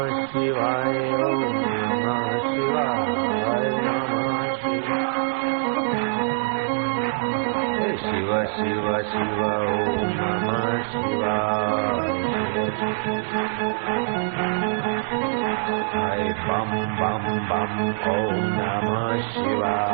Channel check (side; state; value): left; silent; digital silence